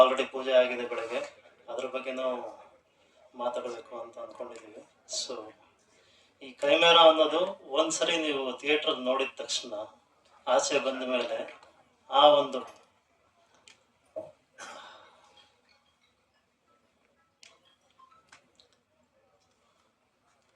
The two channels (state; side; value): identical; both; correlation 1.00